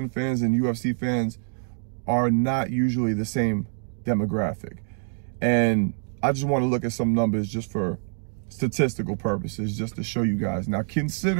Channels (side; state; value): left; silent; digital silence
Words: fans and UFC fans are not usually the same demographic. And I just want to look at some numbers just for statistical purposes, just to show you guys. Now,